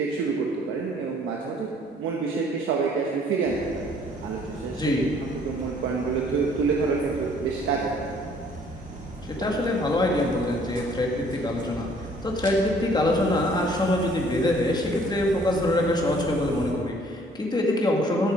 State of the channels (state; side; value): normal; both; correlation 0.59